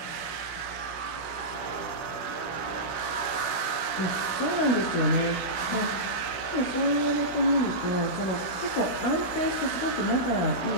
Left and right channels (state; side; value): late; right; 16 ms